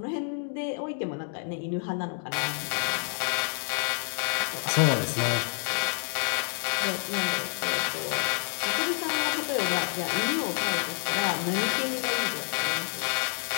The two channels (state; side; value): silent; right; 57 dB below the other